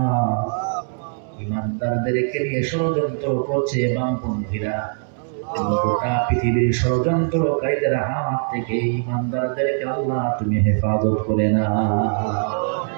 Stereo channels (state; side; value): silent; left; 63 dB below the other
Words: ঈমানদারদেরকে নিয়ে ষড়যন্ত্র করছে বামপন্থীরা। গোটা পৃথিবীর ষড়যন্ত্রকারীদের হাত থেকে ঈমানদারদেরকে আল্লাহ তুমি হেফাজত করে না।